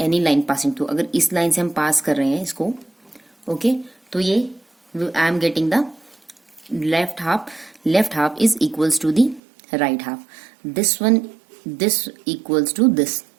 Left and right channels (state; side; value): drops out; left; at 9.4 s